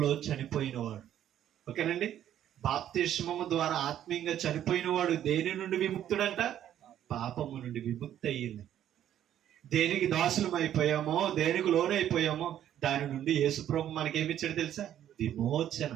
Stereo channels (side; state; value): left; quieter; 11.0 dB